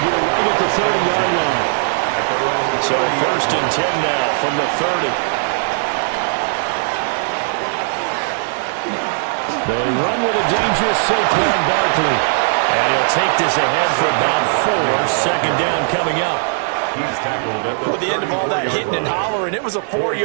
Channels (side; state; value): left; silent; digital silence